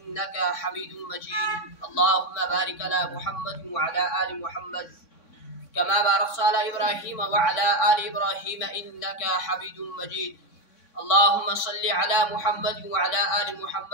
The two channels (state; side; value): late; right; 3.6 ms